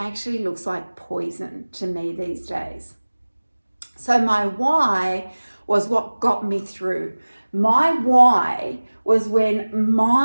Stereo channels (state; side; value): inverted; both; correlation -1.00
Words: looks like poison to me these days. So my why was what got me through. My why was when